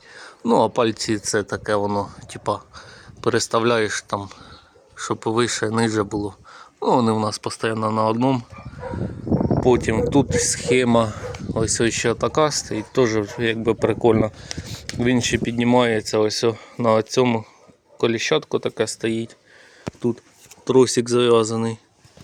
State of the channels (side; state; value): both; identical; correlation 1.00